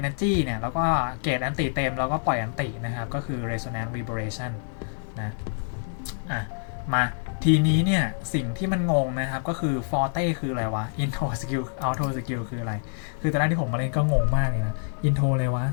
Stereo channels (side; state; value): right; silent; digital silence